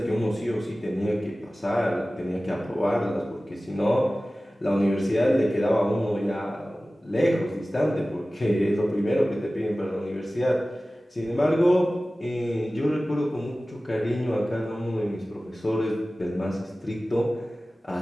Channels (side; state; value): both; normal; correlation 0.97